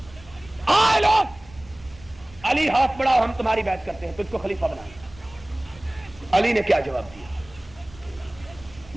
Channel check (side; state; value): right; noise; rumble, 22 dB below the sound